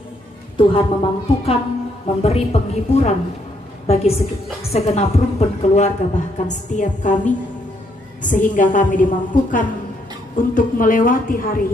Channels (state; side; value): normal; both; correlation 0.73